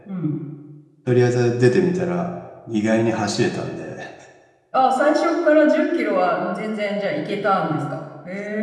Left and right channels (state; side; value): identical; both; correlation 1.00